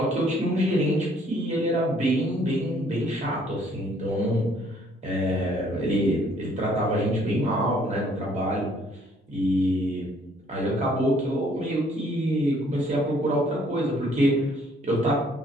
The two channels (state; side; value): normal; both; correlation 0.62